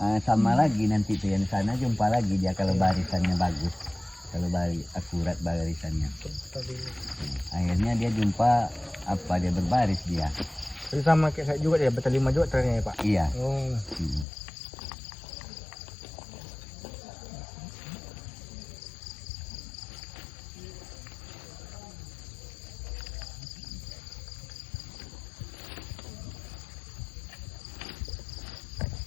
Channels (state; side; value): drops out; right; at 14.2 s